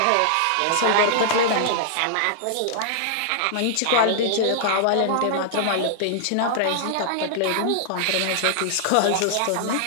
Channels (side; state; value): both; different; correlation -0.01